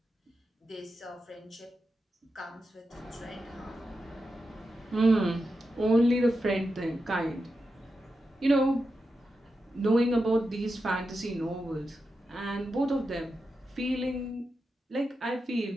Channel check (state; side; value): normal; both; correlation 0.89